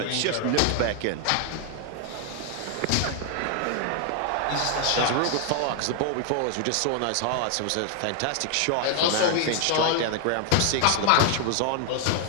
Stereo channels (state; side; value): different; both; correlation 0.00